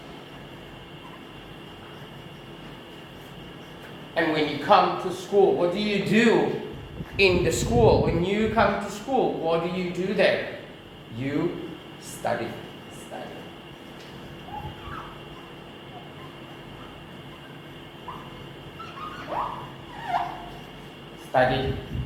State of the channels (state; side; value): identical; both; correlation 1.00